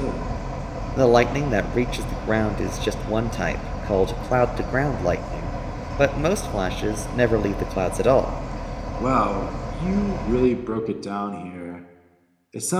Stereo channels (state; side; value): identical; both; correlation 1.00